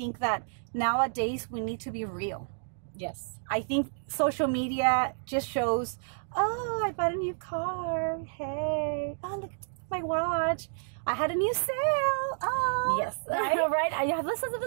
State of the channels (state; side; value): silent; left; digital silence